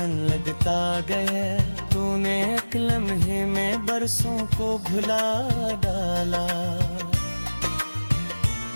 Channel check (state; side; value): inverted; both; correlation -1.00